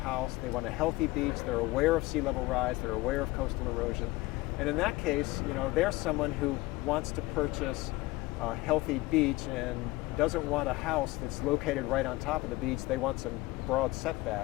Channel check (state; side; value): quieter; right; 20.0 dB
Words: they want a healthy beach, they're aware of sea level rise, they're aware of coastal erosion, and in that case, they're someone who wants to purchase a healthy beach and doesn't want a house that's located right on top of the beach. They want some broad